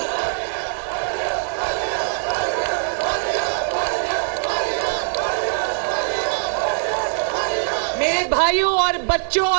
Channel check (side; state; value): left; silent; digital silence